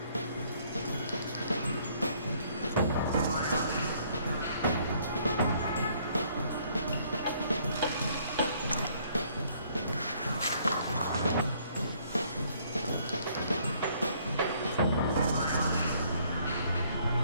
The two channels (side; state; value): both; inverted; correlation -0.64